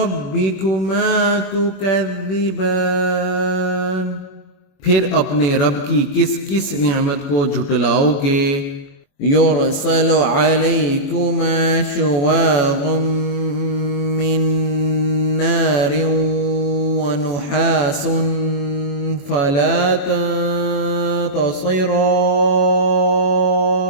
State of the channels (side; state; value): right; late; 21 ms